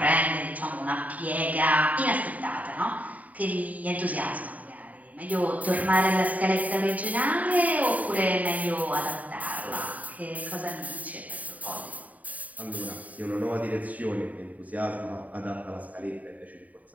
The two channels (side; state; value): left; late; 0.073 ms